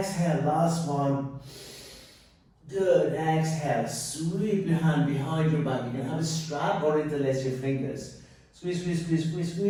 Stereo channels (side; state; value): both; identical; correlation 1.00